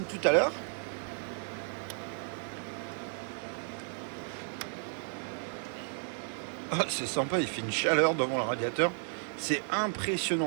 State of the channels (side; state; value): left; silent; 56 dB below the other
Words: tout à l'heure, ah, c'est sympa, il fait une chaleur devant le radiateur, c'est